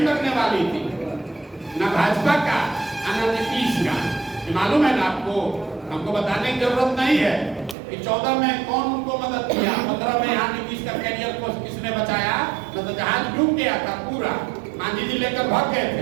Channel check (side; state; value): left; drops out; at 7.8 s